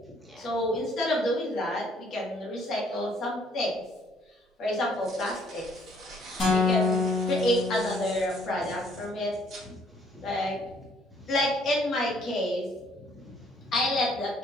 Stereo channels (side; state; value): both; normal; correlation 0.63